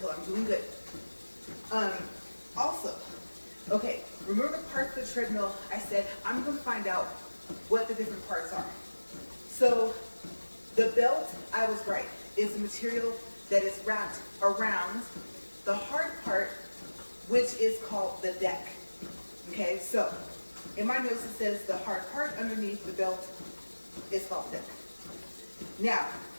I'm doing good. Also, okay, remember the parts of the treadmill? I said I'm going to find out what the different parts are. So the belt, I was right, is a material that is wrapped around the hard part, which is called the deck. Okay, so in my notes it says the hard part underneath the belt is called the deck. Now,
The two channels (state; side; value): inverted; both; correlation -1.00